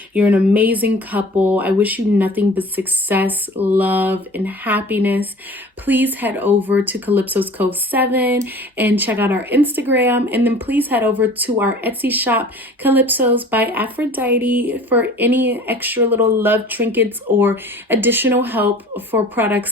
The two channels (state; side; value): normal; both; correlation 0.44